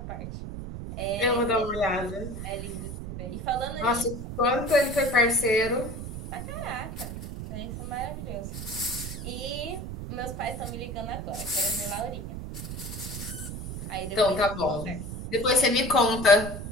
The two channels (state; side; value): noise; right; rumble, 7 dB below the sound